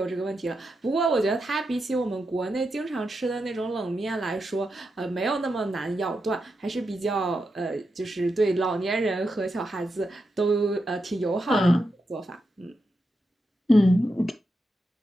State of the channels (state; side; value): normal; both; correlation 0.86